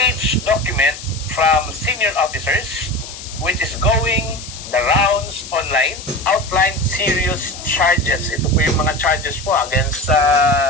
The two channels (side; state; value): left; noise; hiss, 13 dB below the sound